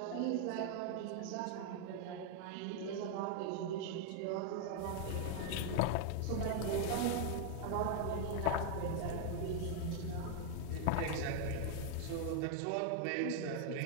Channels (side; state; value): both; different; correlation 0.00